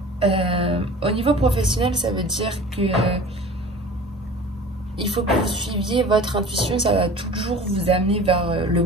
Au niveau professionnel, ça veut dire que il faut que vous suiviez votre intuition. Ça va toujours vous amener vers le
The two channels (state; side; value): normal; both; correlation 0.41